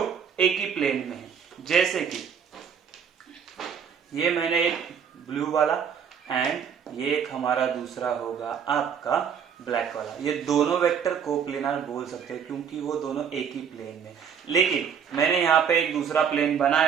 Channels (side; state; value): left; quieter; 7.4 dB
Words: एक ही प्लेन में है। जैसे कि ये मैंने एक ब्लू वाला एंड ये एक हमारा दूसरा होगा आपका ब्लैक वाला, ये दोनों वेक्टर कोप्लेनार बोल सकते हैं क्योंकि वो दोनों एक ही प्लेन में। लेकिन मैंने यहाँ पे एक दूसरा प्लेन